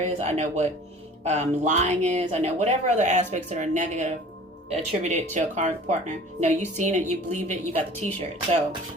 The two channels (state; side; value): normal; both; correlation 0.45